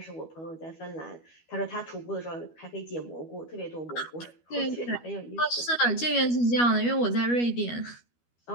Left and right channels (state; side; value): late; right; 12 ms